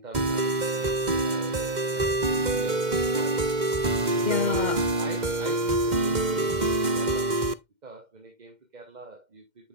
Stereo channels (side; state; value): left; late; 2.1 ms